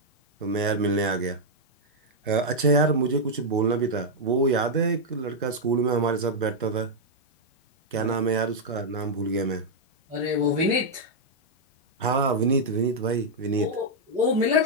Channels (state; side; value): normal; both; correlation -0.04